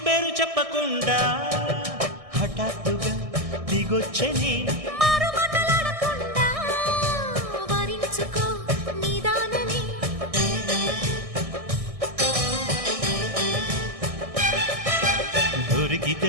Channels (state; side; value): late; left; 1.6 ms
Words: పేరు చెప్పకుండా హఠాత్తుగా దిగొచ్చని దొరికితే